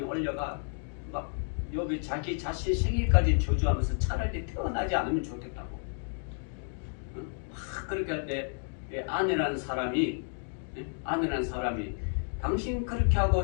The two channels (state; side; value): silent; right; 57 dB below the other